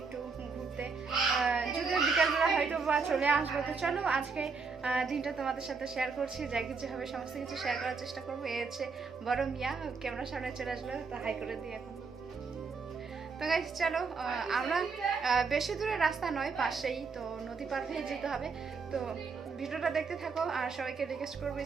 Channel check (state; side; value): quieter; left; 4.9 dB